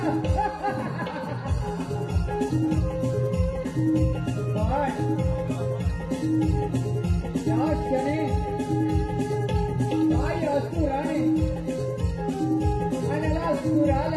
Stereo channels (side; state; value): both; identical; correlation 1.00